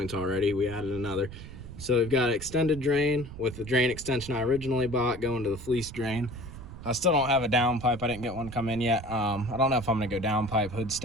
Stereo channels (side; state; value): right; noise; rumble, 13 dB below the sound